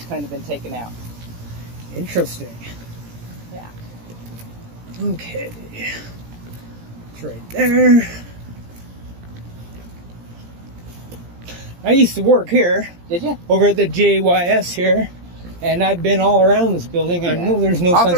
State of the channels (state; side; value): late; left; 17 ms